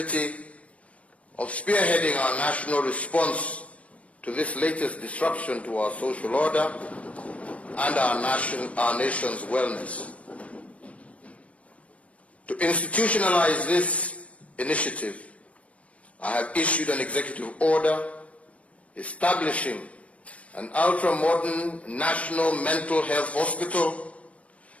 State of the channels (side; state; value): right; late; 0.065 ms